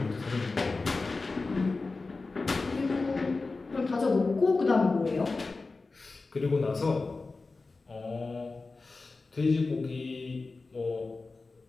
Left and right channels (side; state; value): right; quieter; 3.7 dB